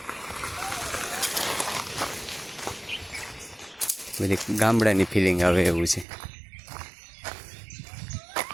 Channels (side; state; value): left; drops out; at 6.1 s